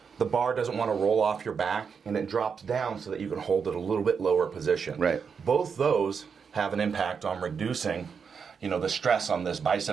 the bar doesn't want to roll off your back, and it drops down so that you can hold it a little bit lower position. Right. Both those have an impact on reducing the stress on this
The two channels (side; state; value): left; quieter; 6.2 dB